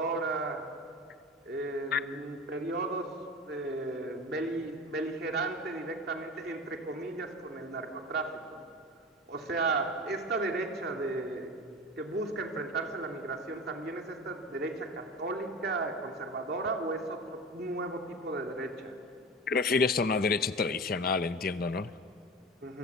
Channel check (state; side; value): normal; both; correlation 0.31